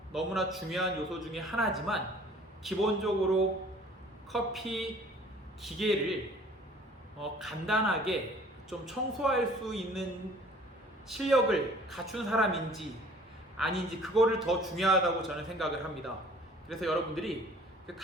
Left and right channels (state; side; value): normal; both; correlation 0.52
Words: 너무나 중요한 요소 중에 하나지만 기본적으로 커피 기계를 간단하게 좀 청소할 수 있는 실력을 갖춘 사람인지 아닌지 그거를 더 중요하다고 저는 생각을 합니다. 그래서 여러분들이